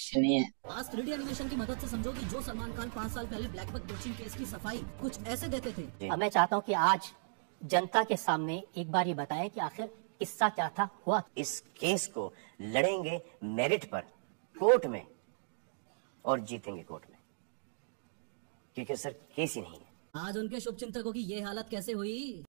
नहीं है। आज 3D एनिमेशन की मदद से समझो कि जो सलमान खान 5 साल पहले ब्लैक बक कोचिंग केस की सफाई कुछ ऐसे देते थे। अब मैं चाहता हूँ कि आज जनता के सामने एक बार ये बताएं कि आखिर किस्सा क्या था, हुआ। इस केस को लड़ेंगे मेरिट पर कोर्ट में और जीतेंगे कोर्ट में, क्योंकि सर केस ही नहीं है। आज उनके शुभ चिंतकों की ये हालत कैसे हुई?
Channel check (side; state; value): left; silent; digital silence